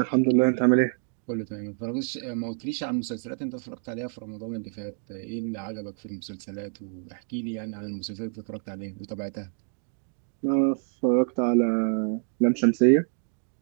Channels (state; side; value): silent; left; 60 dB below the other